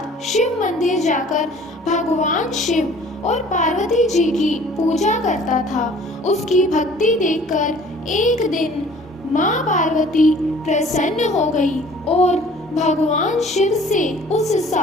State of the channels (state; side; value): normal; both; correlation 0.51